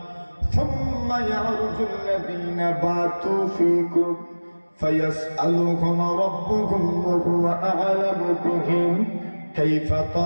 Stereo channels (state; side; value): inverted; both; correlation -1.00